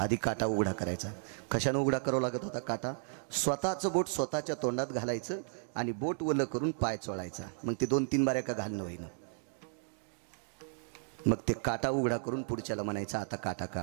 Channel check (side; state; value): left; silent; 55 dB below the other